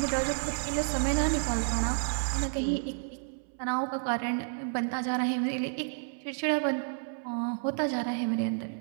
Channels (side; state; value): left; silent; 57 dB below the other